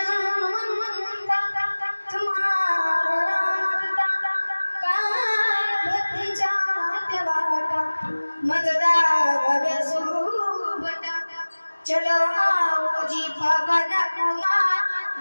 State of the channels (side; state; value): both; inverted; correlation -1.00